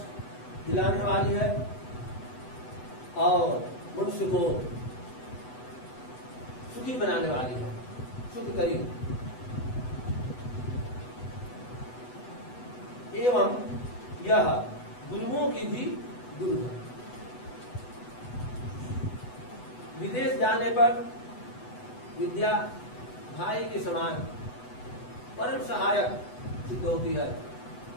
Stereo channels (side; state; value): right; late; 8.1 ms